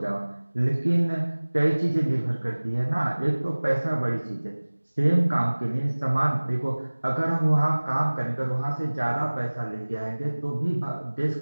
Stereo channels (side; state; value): both; inverted; correlation -1.00